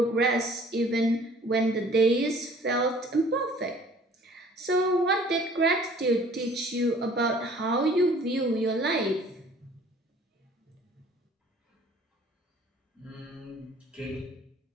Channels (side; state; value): both; normal; correlation 0.52